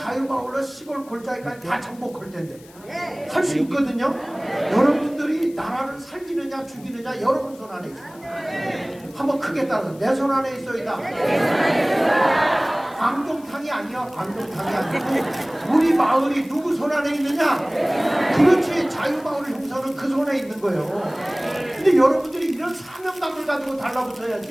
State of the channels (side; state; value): left; noise; hiss, 25 dB below the sound